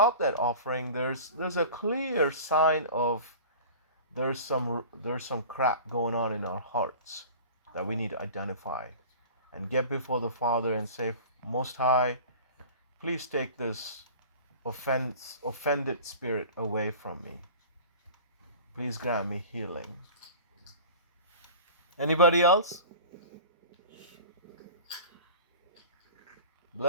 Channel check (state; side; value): inverted; both; correlation -0.39